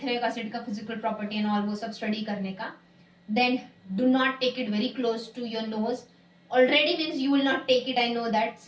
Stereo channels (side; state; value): both; identical; correlation 1.00